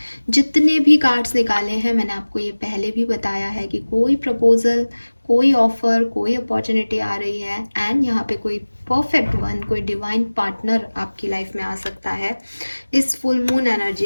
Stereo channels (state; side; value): inverted; both; correlation -1.00